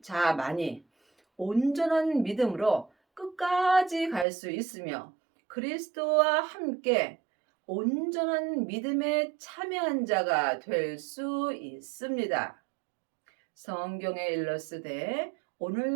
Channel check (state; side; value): drops out; left; at 4.2 s